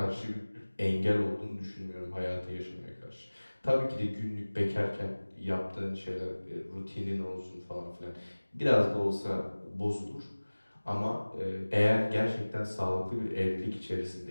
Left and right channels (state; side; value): inverted; both; correlation -1.00